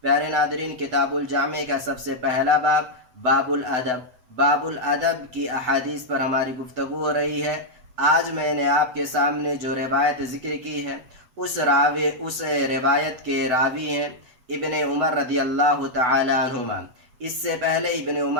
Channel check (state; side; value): late; left; 8.0 ms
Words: پیارے ناظرین، کتاب الجامع کا سب سے پہلا باب الادب، باب الادب کی احادیث پر ہماری گفتگو ہو رہی ہے۔ آج میں نے آپ کے سامنے جو روایت ذکر کی ہے اس روایت کے راوی ہیں ابن عمر رضی اللہ تعالی عنہما۔ اس سے پہلے ابن